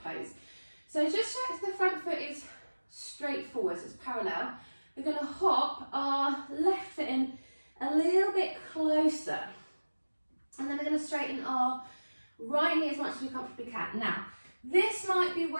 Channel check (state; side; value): inverted; both; correlation -1.00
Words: pose. So just check the front foot is straight forward, so it's parallel. We're going to hop our left foot in a little bit closer. And then we're going to straighten our right knee as much as we comfortably can. Now, this might be